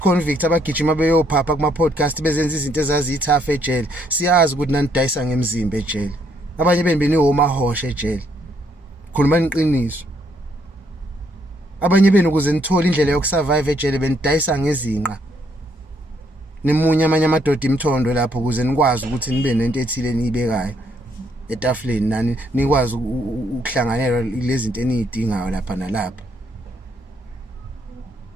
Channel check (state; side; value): normal; both; correlation 0.71